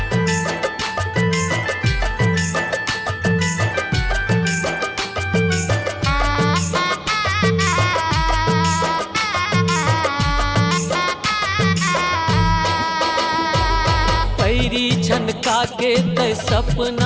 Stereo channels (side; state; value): both; identical; correlation 1.00